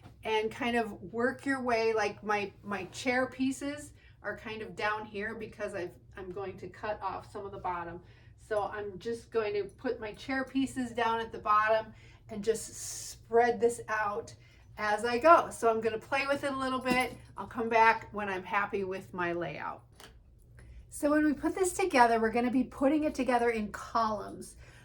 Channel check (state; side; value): identical; both; correlation 1.00